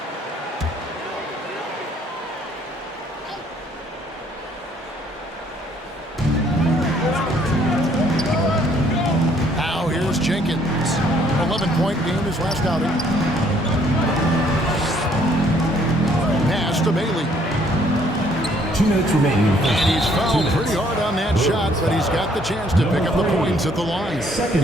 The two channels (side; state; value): both; normal; correlation 0.64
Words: Now here's Jenkins. 11-point game his last outing. Pass to Bailey. 2 minutes remaining. And he's fouled pretty hard on that shot, but he's got the chance to pick up the points at the line.